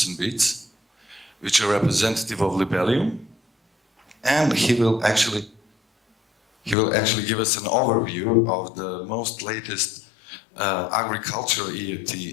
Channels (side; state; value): right; drops out; at 6.8 s